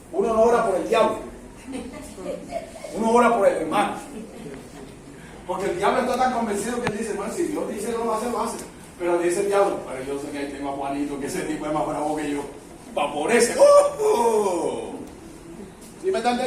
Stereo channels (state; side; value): identical; both; correlation 1.00